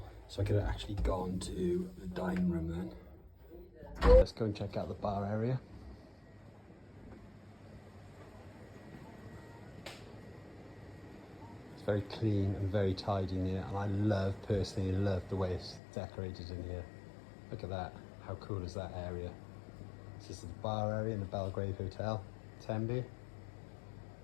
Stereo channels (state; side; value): drops out; right; at 15.8 s